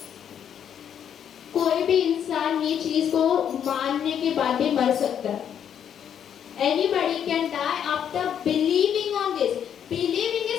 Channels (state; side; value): quieter; right; 8.9 dB